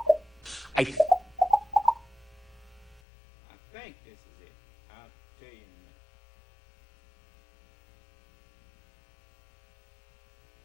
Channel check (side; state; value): right; drops out; at 3.0 s